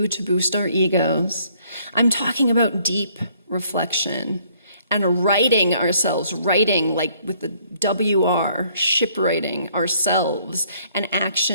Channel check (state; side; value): inverted; both; correlation -0.64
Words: to boost our egos. I'm talking about deep reflection and writing like with the WR, shipwriting ourselves and